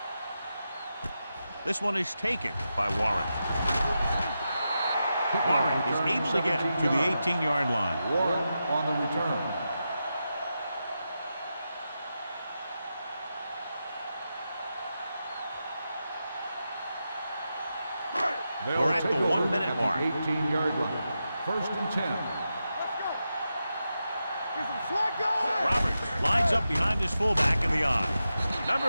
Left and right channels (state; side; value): inverted; both; correlation -0.89